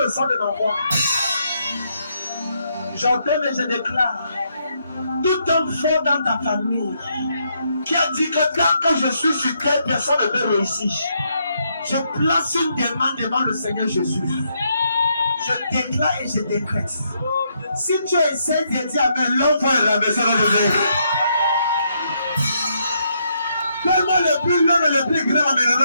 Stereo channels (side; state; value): both; inverted; correlation -0.76